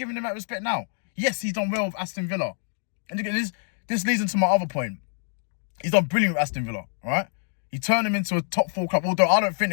him that respect now? Yes, he's done well with Aston Villa. And again, this leads into my other point. He's done brilliant with Aston Villa, all right? He turned them into a top 4 club, although I don't think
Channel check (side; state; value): right; silent; 61 dB below the other